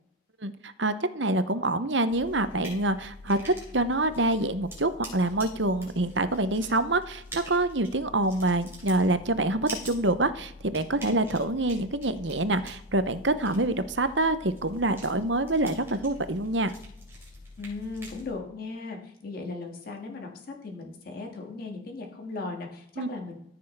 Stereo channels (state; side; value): normal; both; correlation 0.09